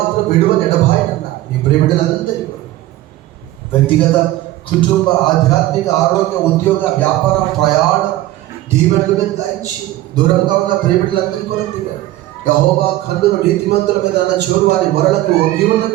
విడువని ఎడబాయను అన్నారు. నీ ప్రియబిడ్డలందరికీ కూడా వ్యక్తిగత, కుటుంబ, ఆధ్యాత్మిక, ఆరోగ్య, ఉద్యోగ, వ్యాపార, ప్రయాణ దీవెనలు మీద దాయించి దూరంగా ఉన్న ప్రియబిడ్డలందరికీ కూడా దిగారు. యెహోవా కన్నులు నీతిమంతుల మీద అన్న చోరు వారి మొరలకు ఒగ్గి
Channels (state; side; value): quieter; left; 15.7 dB